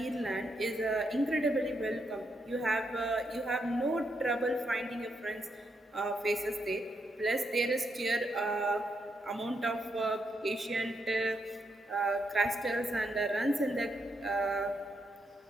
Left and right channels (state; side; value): normal; both; correlation 0.80